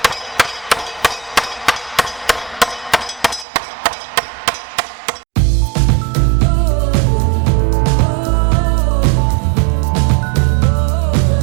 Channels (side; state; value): left; drops out; at 3.5 s